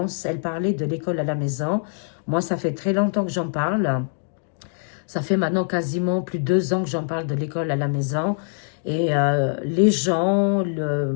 Elle parlait de l'école à la maison. Moi, ça fait très longtemps que j'en parle. Ça fait maintenant quasiment plus de 2 ans que j'en parle de l'école à la maison. Et les gens,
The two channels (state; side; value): silent; right; 63 dB below the other